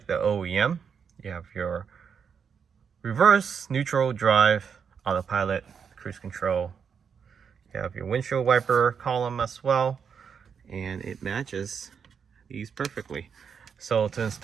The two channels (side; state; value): left; quieter; 6.8 dB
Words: the OEM. You have your reverse, neutral, drive, autopilot, cruise control. You have your windshield wiper column as well, and it matches these perfectly. So to